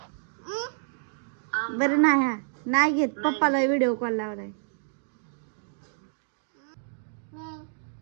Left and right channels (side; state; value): left; silent; digital silence